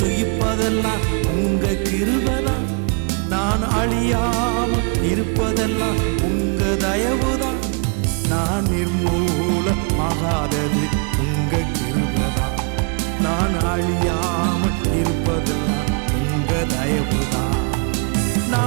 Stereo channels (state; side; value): quieter; left; 36.3 dB